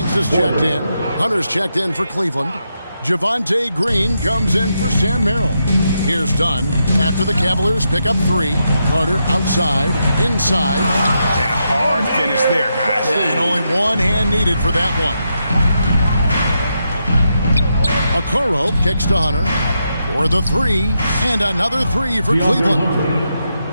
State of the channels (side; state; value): both; inverted; correlation -0.83